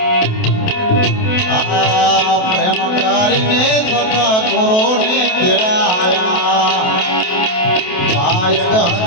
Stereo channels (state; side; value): late; right; 28 ms